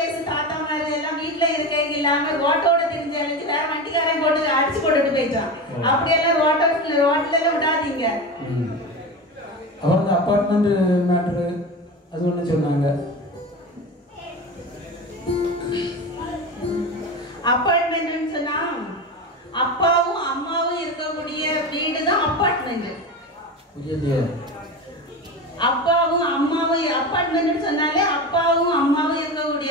தாத்தா மாதிரி எல்லாம் வீட்டுல இருக்க இல்லாம ரோட்டோட தெரிஞ்சாலும் வேற வண்டிக்காரன் போட்டு அடிச்சு போட்டுட்டு போயிட்டான். அப்படியெல்லாம் ரோட்ல எல்லாம் விடாதீங்க. அவங்க அப்பார்ட்மெண்ட் மேட்ரு அது ஒண்ணு சொன்னாங்க. அப்பார்ட்மெண்ட் சொன்னா அப்பாவும் அம்மாவும் இருக்கக்கூடிய வீடு தான் அப்பார்ட்மெண்ட். அப்பாவும் அம்மாவும் அப்பார்ட்மெண்ட் சொன்னாலே அப்பாவும் அம்மாவும்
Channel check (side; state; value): both; normal; correlation 0.25